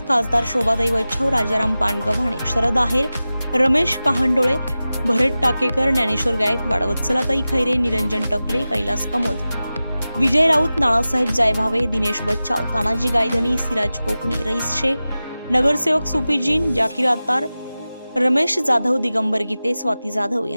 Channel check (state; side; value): inverted; both; correlation -0.96